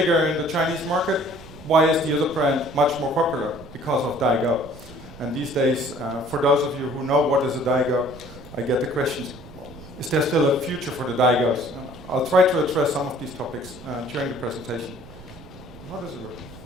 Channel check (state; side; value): noise; right; rumble, 18 dB below the sound